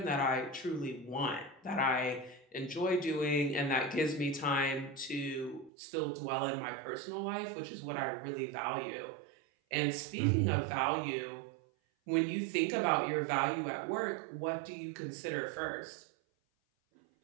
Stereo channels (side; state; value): left; drops out; at 5.7 s